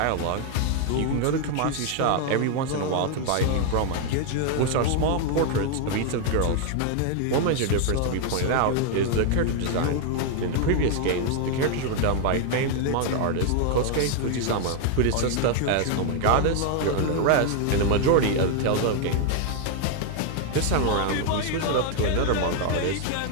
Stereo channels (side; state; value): both; different; correlation 0.00